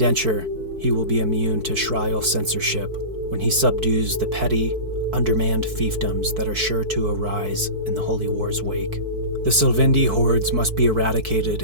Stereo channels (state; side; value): late; left; 4.5 ms